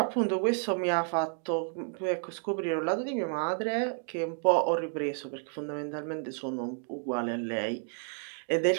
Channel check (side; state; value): left; silent; 57 dB below the other